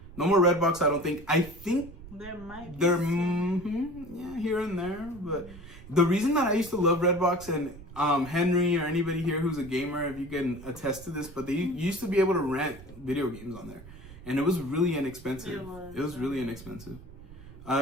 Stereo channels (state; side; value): noise; right; rumble, 17 dB below the sound